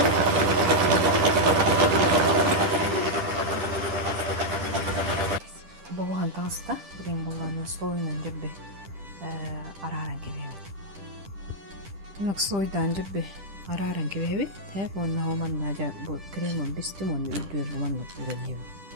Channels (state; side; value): late; left; 10 ms